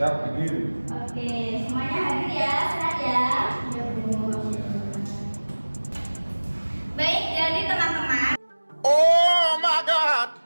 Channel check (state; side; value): inverted; both; correlation -1.00